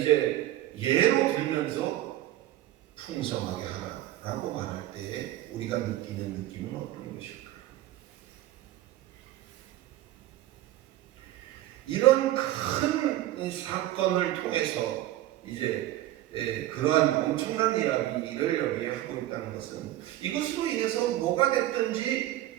예로 들면서 풍성하게 하라라고 말할 때 우리가 느끼는 느낌은 어떤 것일까? 이런 큰 사건을 통해서 이제 그러한 엄청난 이야기를 여기에 하고 있다는 것은 이것으로 인해서 뭐가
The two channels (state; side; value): quieter; left; 14.6 dB